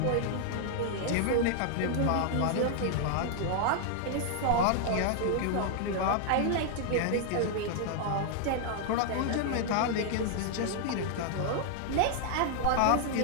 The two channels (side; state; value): both; different; correlation 0.00